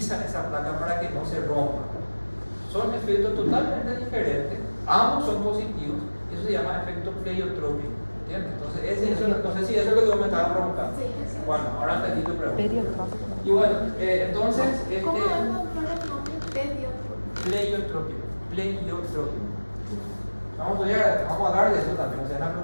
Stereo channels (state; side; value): inverted; both; correlation -1.00